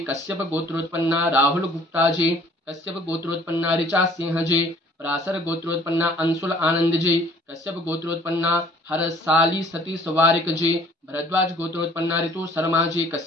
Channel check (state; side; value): normal; both; correlation 0.55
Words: कश्यप गोत्रोत्पन्ना राहुल गुप्ता जी कश्यप गोत्रोत्पन्ना ऋचा सिंह जी पराशर गोत्रोत्पन्ना अंशुल आनंद जी कश्यप गोत्रोत्पन्ना हरसाली सतीश वारिक जी भरद्वाज गोत्रोत्पन्ना ऋतु शर्मा जी